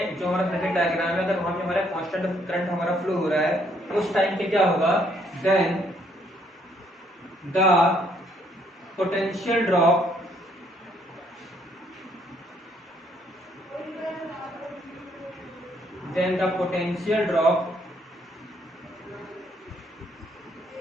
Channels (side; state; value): both; normal; correlation 0.68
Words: जो हमारा सर्किट डायग्राम है, अगर वहां पे हमारा कांस्टेंट करंट हमारा फ्लो हो रहा है, उस टाइम पे क्या होगा, then the potential drop